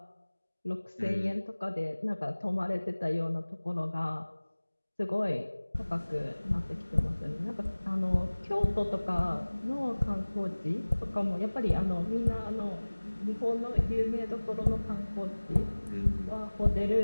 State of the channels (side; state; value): both; inverted; correlation -1.00